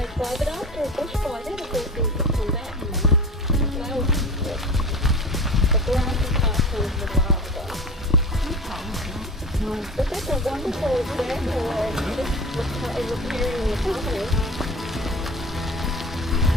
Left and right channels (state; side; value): normal; both; correlation 0.33